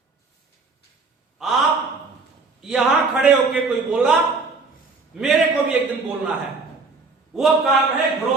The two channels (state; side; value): quieter; left; 4.1 dB